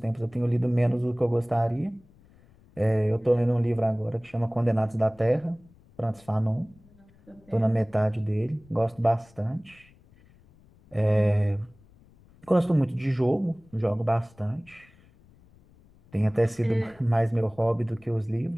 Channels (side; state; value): left; noise; rumble, 28 dB below the sound